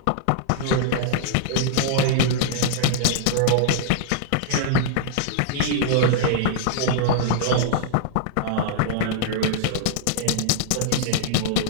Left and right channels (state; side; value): different; both; correlation -0.01